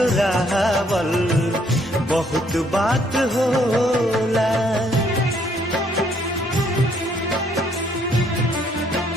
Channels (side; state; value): both; normal; correlation 0.67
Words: बहुत बात होला।